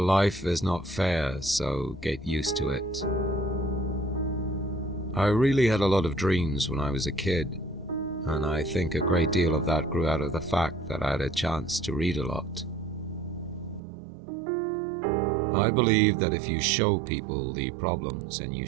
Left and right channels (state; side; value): drops out; left; at 13.8 s